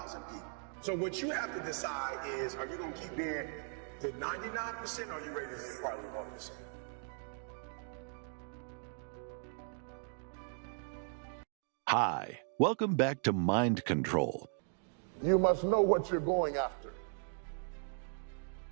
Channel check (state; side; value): silent; left; 53 dB below the other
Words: people. So what you have to decide is, are you gonna keep being the 99% or are you ready to be partly 1%? Hi, welcome back to Mind Control. You must know what you're going after.